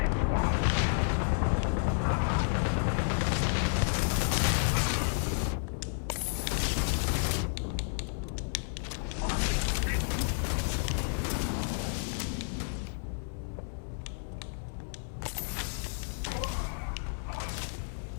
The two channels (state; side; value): silent; right; 56 dB below the other